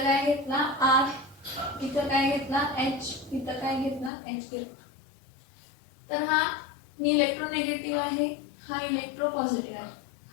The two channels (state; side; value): drops out; right; at 4.1 s